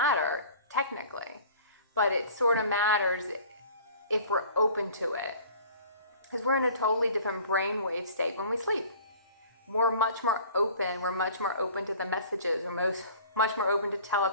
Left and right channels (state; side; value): inverted; both; correlation -0.47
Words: technically, but it sort of matters if we're open to it, because we're in a totally different brainwave state when we sleep. We're much more open. We're much more open to the messages. We're much more open to